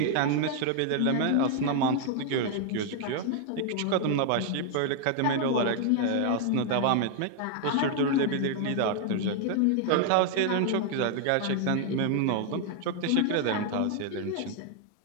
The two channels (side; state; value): both; different; correlation 0.00